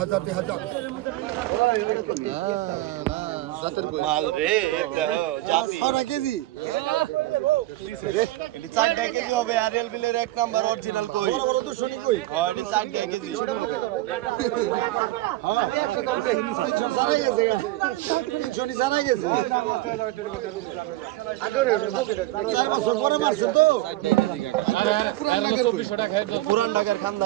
মাল রে এটা জাতি 6 কেজি এটা 4 কেজি হবে আরএল বিলের এক নাম্বার অরিজিনাল কই হয় এটা 4 কেজি পুরান ঢাকার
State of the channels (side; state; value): left; quieter; 17.1 dB